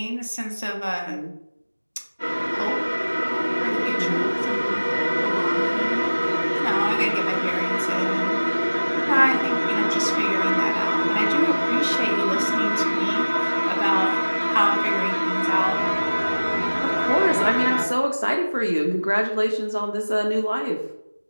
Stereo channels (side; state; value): both; inverted; correlation -1.00